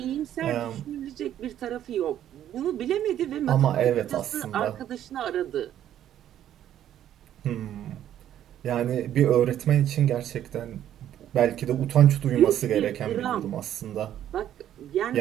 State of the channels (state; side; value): quieter; left; 11.2 dB